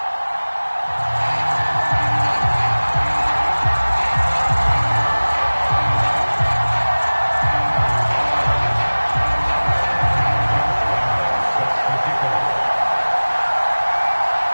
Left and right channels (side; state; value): both; inverted; correlation -1.00